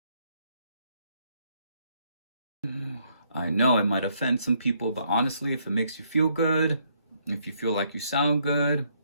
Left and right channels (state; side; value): inverted; both; correlation -0.70